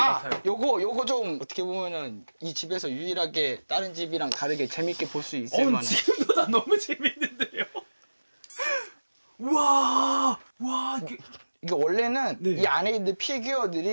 같아요. 요거 좀 어떻게 보면은 이 집에서 유일하게 다른 집이랑 다르게 재밌게 볼 수 있을 만한. 지금보다 너무 재밌는데요. 와, 이게 원래는 네. 이 안에 있는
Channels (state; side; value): inverted; both; correlation -1.00